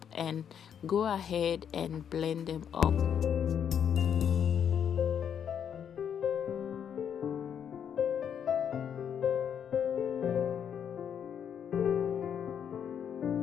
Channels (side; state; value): right; quieter; 8.3 dB